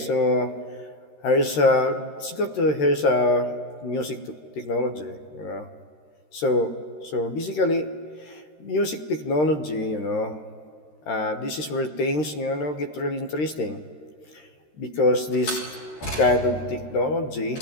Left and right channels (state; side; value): late; right; 13 ms